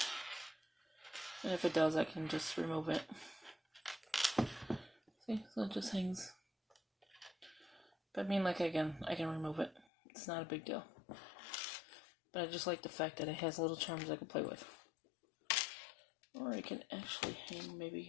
And if it does, I can just remove it. See, so it just hangs. But I mean, like, again, I can remove it. It's not a big deal. But I just like the fact that it has little charms I can play with. Or I can actually hang,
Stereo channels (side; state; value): right; drops out; at 9.9 s